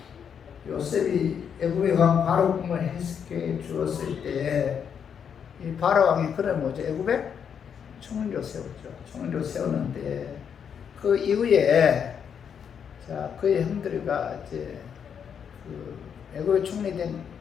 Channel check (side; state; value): right; quieter; 7.6 dB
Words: 요셉이 애굽의 왕 바로 꿈을 해석해 주었을 때 이 바로 왕이 그래 뭐죠? 애굽에 총리로 세웠죠. 총리로 세웠는데 그 이후에 자 그의 형들과 이제 그 애굽의 총리된